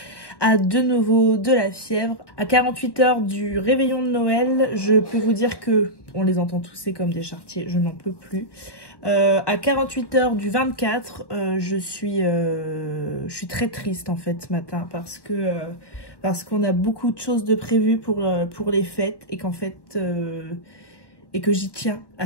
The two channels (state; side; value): late; right; 1.1 ms